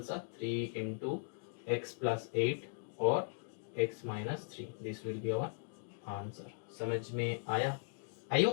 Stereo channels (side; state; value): right; silent; digital silence